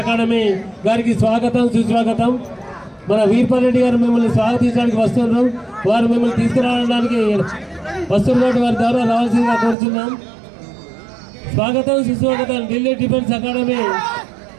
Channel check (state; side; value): drops out; left; at 9.8 s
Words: అకాడమీ గారికి స్వాగతం సుస్వాగతం. మన వీర్పాల్ రెడ్డి గారు మిమ్మల్ని స్వాగతించడానికి వస్తున్నారు. వారు మిమ్మల్ని తీసుకురావడానికి వస్తున్నటువంటి వారి ద్వారా రావాల్సిందిగా కోరుతున్నాం. స్వాగతం సుస్వాగతం. ఢిల్లీ డిఫెన్స్ అకాడమీ